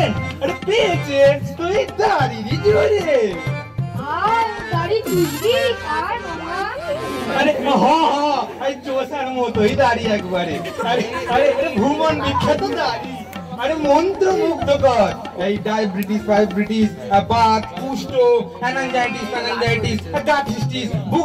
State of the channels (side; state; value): both; identical; correlation 1.00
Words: আরে পেয়েছেন তুই দাড়িরই জোরে। আর দাড়ি চুষবি আর মামা? আরে এই চোষার মতোই দাড়ি একবারে। আরে আরে ভুবন বিখ্যাত দাড়ি। আরে মন্ত্র মুগ্ধকর। এই ডায়াবেটিস, ফাইব্রিটিস, বাত, কুষ্ঠ, অ্যানাঞ্জাইটিস, গাঠিস্টিস,